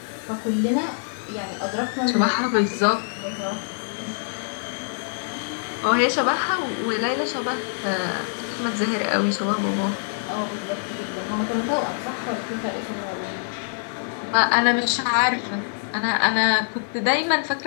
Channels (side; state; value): right; silent; 62 dB below the other